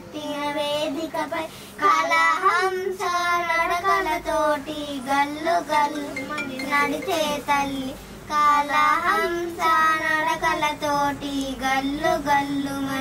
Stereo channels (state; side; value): identical; both; correlation 1.00